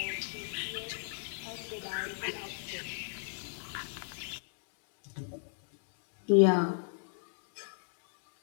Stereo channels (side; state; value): right; silent; 55 dB below the other